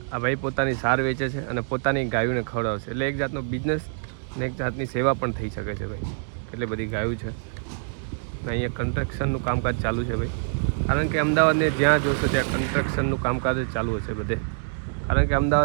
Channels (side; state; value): left; silent; digital silence